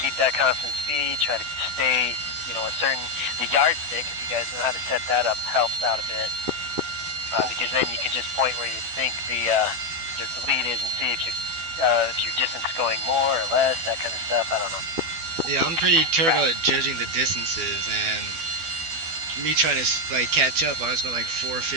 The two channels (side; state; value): left; late; 12 ms